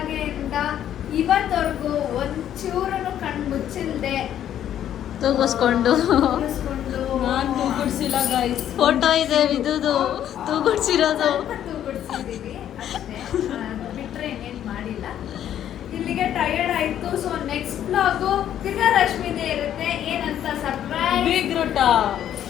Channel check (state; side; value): quieter; right; 10.7 dB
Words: ಇವತ್ತವರೆಗೂ ಒಂಚೂರನ್ನು ಕಣ್ಣು ಮುಚ್ಚಿಲ್ದೆ ತೂಗಿಸ್ಕೊಂಡು ನಾನು ತೂಗುಡ್ಸಿಲ್ಲ ಗೈಸ್. ಫೋಟೋ ಇದೆ ಇದುದು ತೂಗುಡ್ಸಿರೋದು. ತೂಗುಡ್ಸಿದೀವಿ ಅಷ್ಟೇ, ಬಿಟ್ರೆ ಏನೇನು ಮಾಡಿಲ್ಲ. ಇಲ್ಲಿಗೆ ಟಯರ್ಡ್ ಆಯ್ತು. ಸೊ ನೆಕ್ಸ್ಟ್ ಬ್ಲಾಗು ತಿರ್ಗಾ ರಶ್ಮಿದೇ ಇರುತ್ತೆ. ಏನಂತ ಸರ್ಪ್ರೈಸ್ ಬಿಗ್ ರೂಟ